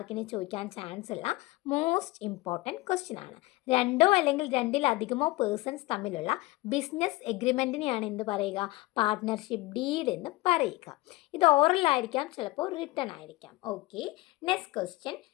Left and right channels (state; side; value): quieter; right; 20.5 dB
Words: ചോദിക്കാൻ ചാൻസ് ഉള്ള മോസ്റ്റ് ഇമ്പോർട്ടൻറ്റ് ക്വസ്റ്റ്യൻ ആണ്. രണ്ടോ അല്ലെങ്കിൽ രണ്ടിലധികമോ പേഴ്സൺസ് തമ്മിലുള്ള ബിസിനസ് എഗ്രിമെൻറ്റിനെയാണ് എന്ത് പറയുക? പാർട്ട്ണർഷിപ്പ് ഡീഡ് എന്ന് പറയുക. ഇത് ഓറൽ ആയിരിക്കാം, ചിലപ്പോൾ റിട്ടൺ ആയിരിക്കാം. Okay, next question